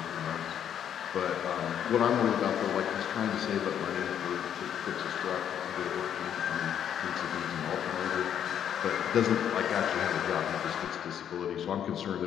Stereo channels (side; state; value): right; quieter; 9.3 dB